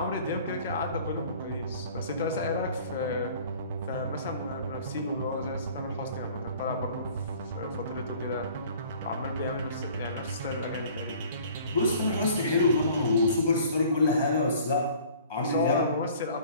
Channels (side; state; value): both; inverted; correlation -0.51